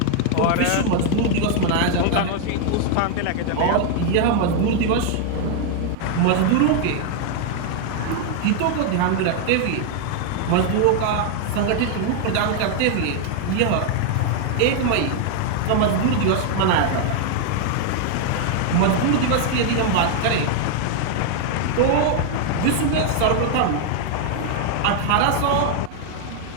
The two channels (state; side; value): different; both; correlation 0.00